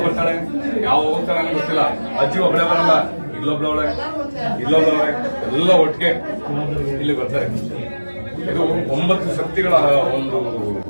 ಬರ್ತಾಳೆ, ಯಾವ ಹೋಗ್ತಾಳೆ ಅನ್ನೋ ಗೊತ್ತಿಲ್ಲ. ಅಜ್ಜಿ ಒಬ್ಬಳೆ ಬರಲ್ಲ, ಇಲ್ಲೊಬ್ಳವಳೆ ಇಲ್ಲೊಬ್ಳವಳೆ ಎಲ್ಲ ಒಟ್ಟಿಗೆ ಇಲ್ಲಿ ಬರ್ತಾರೆ. ಇದು 9 ಶಕ್ತಿಗಳ ಒಂದು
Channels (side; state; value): both; inverted; correlation -1.00